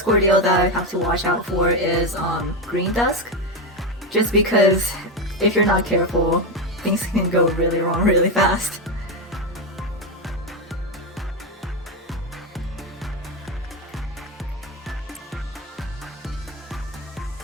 ordeal that I have to watch out for is Green Dusk. Just because if you're not careful, things can go really wrong really fast.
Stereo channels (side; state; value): both; normal; correlation 0.11